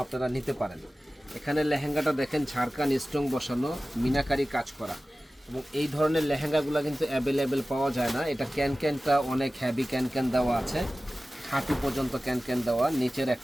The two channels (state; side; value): normal; both; correlation 0.96